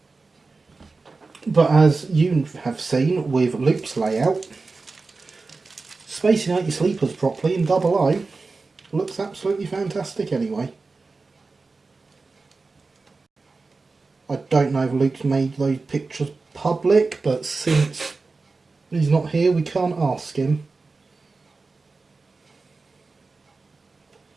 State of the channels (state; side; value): quieter; left; 3.9 dB